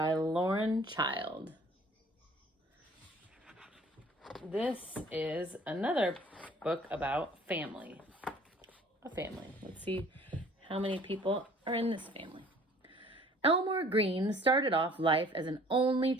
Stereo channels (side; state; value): both; normal; correlation 0.53